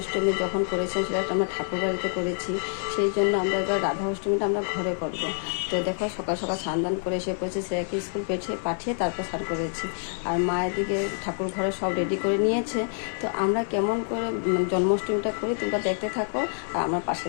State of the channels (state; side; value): silent; right; digital silence